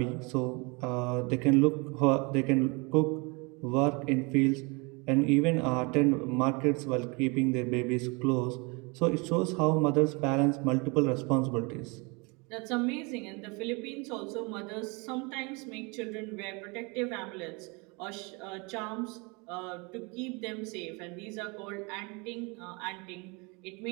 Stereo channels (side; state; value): left; quieter; 29.4 dB